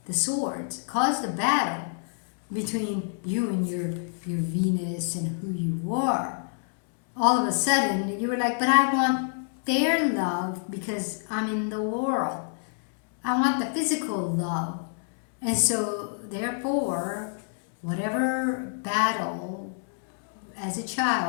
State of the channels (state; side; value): silent; right; digital silence